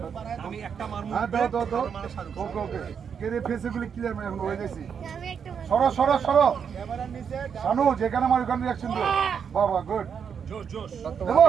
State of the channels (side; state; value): left; quieter; 7.1 dB